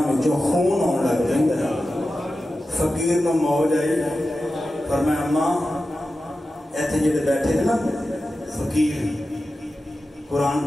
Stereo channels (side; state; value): both; normal; correlation 0.93